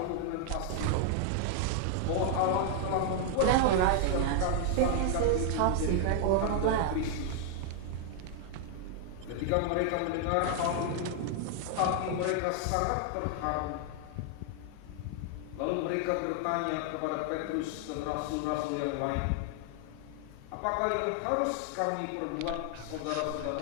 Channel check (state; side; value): different; both; correlation 0.00